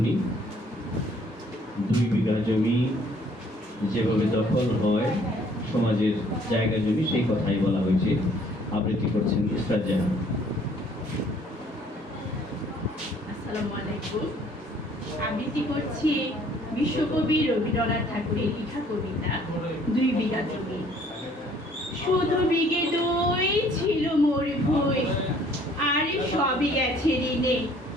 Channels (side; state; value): both; normal; correlation 0.59